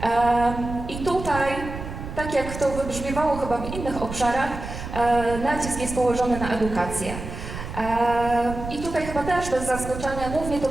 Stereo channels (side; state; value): right; noise; rumble, 9 dB below the sound